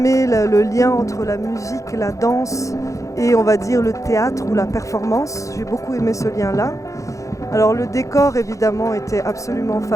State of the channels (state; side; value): late; right; 0.15 ms